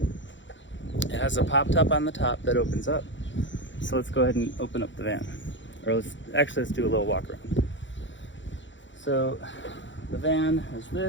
It has a pop top on the top that opens up. So let's go ahead and open up the van. Or let's do a little walk around. So the van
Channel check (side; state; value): right; late; 0.54 ms